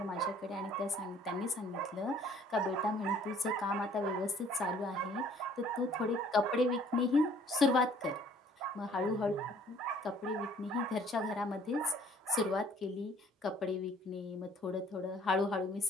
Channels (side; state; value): both; normal; correlation 0.57